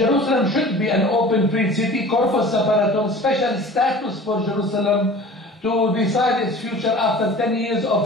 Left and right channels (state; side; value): normal; both; correlation 0.42